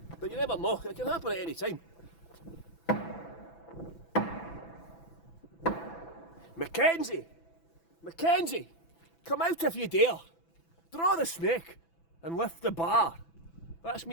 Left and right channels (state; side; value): late; right; 6.0 ms